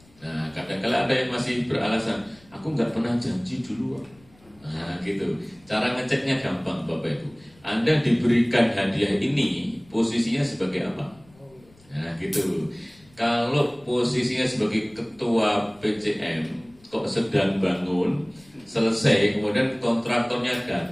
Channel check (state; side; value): noise; left; rumble, 28 dB below the sound